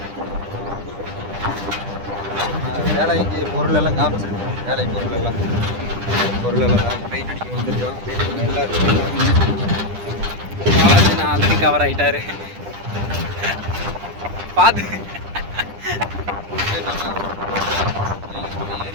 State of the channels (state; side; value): late; left; 10 ms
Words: வேலைக்கு பொருளெல்லாம் காமிச்சிருக்கேன். வேலை பொருளெல்லாம் பெயிண்ட் அடிக்க வந்துருக்கோம். எல்லாருக்கும் ஆல்ரெடி கவர் ஆகிட்டாரு. பார்த்து